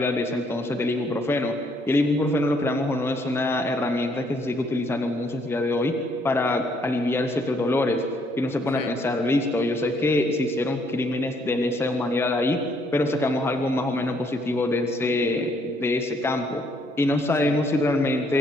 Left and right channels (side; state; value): both; normal; correlation 0.68